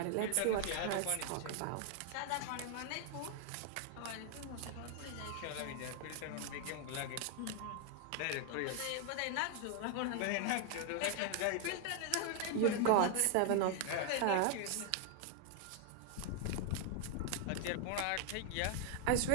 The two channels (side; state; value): both; different; correlation 0.00